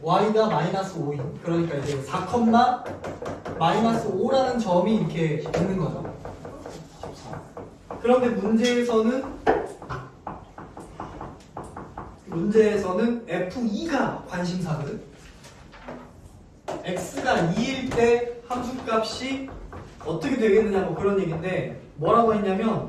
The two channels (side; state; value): both; identical; correlation 1.00